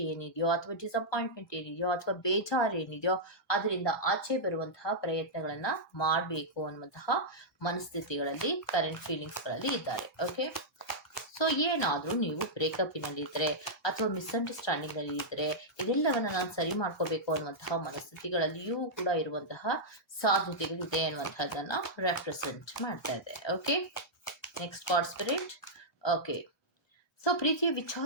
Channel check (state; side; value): normal; both; correlation -0.08